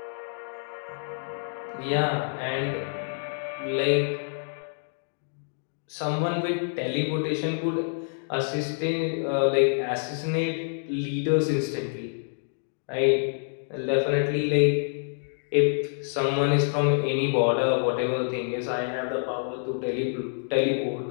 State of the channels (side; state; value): right; silent; digital silence